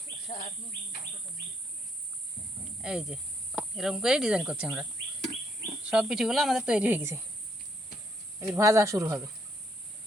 এই যে এরকম করে ডিজাইন করছি আমরা, সব পিঠেগুলো আমাদের তৈরি হয়ে গেছে, এবার ভাজা শুরু হবে।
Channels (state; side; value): normal; both; correlation 0.72